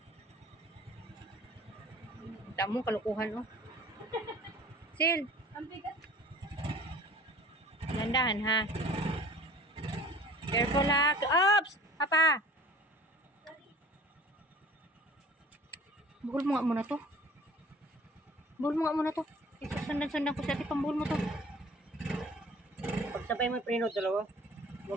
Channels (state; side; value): normal; both; correlation 0.46